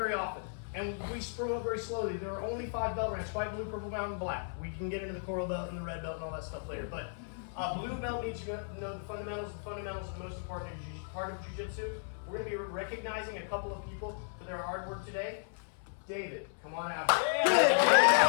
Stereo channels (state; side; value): silent; right; 55 dB below the other